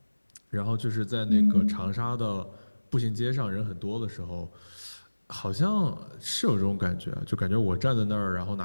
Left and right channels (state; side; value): inverted; both; correlation -1.00